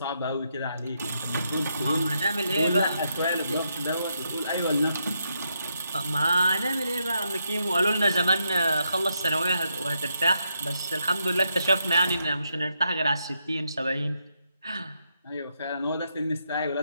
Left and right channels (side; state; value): both; inverted; correlation -0.81